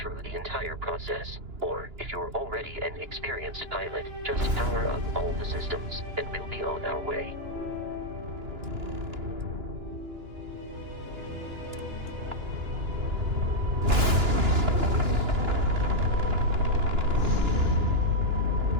the entire process, or if you're already an experienced pilot, just power up all the systems and we'll be on our way.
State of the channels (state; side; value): late; left; 2.9 ms